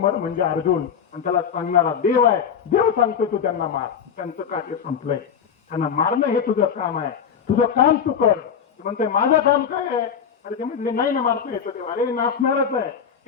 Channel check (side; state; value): right; quieter; 7.4 dB